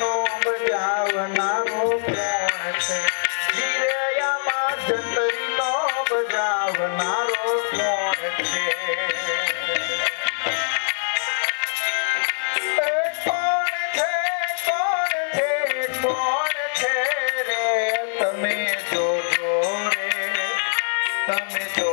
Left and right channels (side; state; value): right; silent; 63 dB below the other